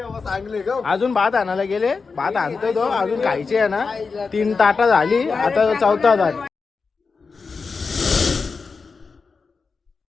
अजून भात आणायला गेले. भात आणतो तो अजून खायचे आहे ना. 3 ताटा झाली आता 4था ताट.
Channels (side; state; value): right; quieter; 4.8 dB